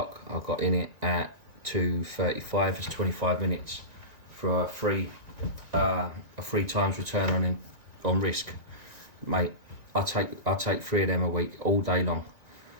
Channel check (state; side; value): late; left; 1.9 ms